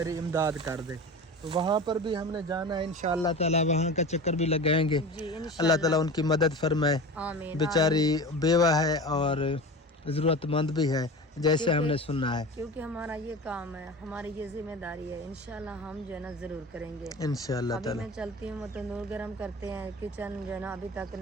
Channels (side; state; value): both; normal; correlation 0.32